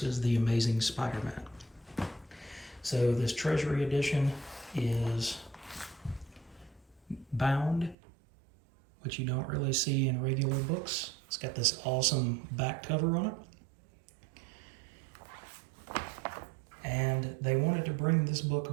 the Amazing Spider-Man. So this Treasury edition is bound, which you don't really see in regular books. It's got this awesome back cover on it. And they wanted to bring this book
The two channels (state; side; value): drops out; left; at 8.0 s